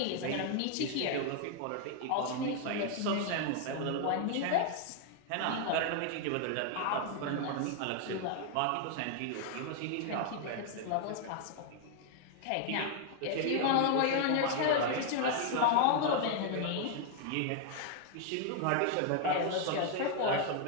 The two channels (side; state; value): both; different; correlation 0.00